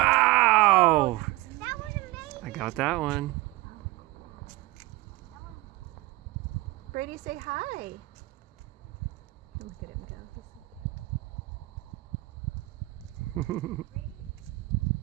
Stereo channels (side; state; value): left; quieter; 19.8 dB